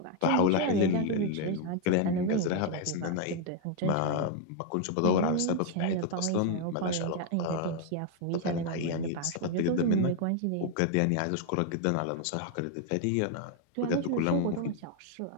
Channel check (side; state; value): both; different; correlation 0.01